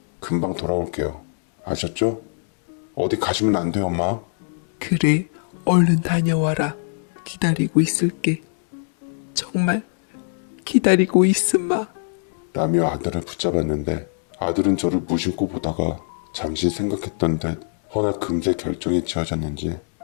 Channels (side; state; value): right; silent; 62 dB below the other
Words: 금방 돌아올게요. 아셨죠? 어디 가시면 안 돼요, 엄마. 그래, 얼른 다녀와라. 기다리고 있을게. 정말 기다리고 있으마. 라며 아들을 붙잡았는데 아들은 저를 무심코 보다가 잠시 생각했던 듯 허나 금세 결정이 지어졌는지